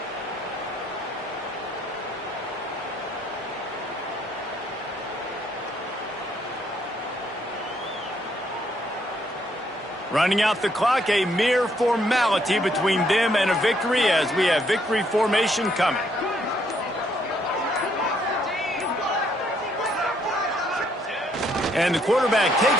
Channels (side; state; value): both; normal; correlation 0.70